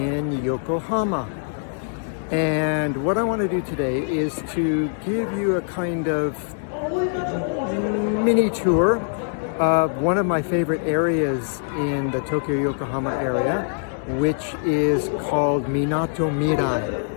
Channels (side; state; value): right; silent; digital silence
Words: Yokohama, and what I want to do today is to give you a kind of mini tour of one of my favorite areas in the Tokyo-Yokohama area, which is called Minato